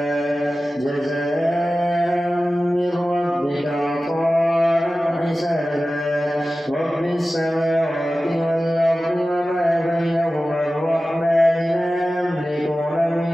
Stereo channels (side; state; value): both; normal; correlation 0.95